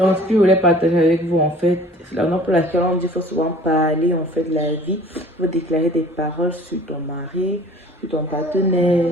ce que je voulais partager avec vous, en fait, c'est la raison pour laquelle on dit qu'il faut souvent parler, en fait, de la vie. Il faut déclarer des paroles sur ton mari, sur ton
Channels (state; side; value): normal; both; correlation 0.48